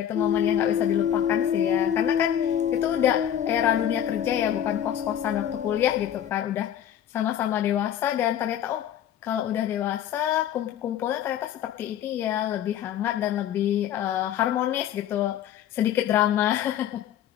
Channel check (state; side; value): quieter; right; 10.4 dB